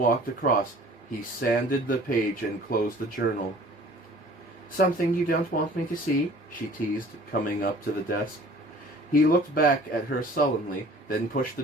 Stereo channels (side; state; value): both; normal; correlation 0.49